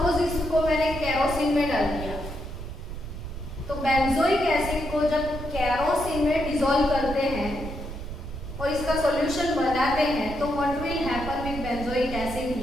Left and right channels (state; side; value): noise; right; rumble, 9 dB below the sound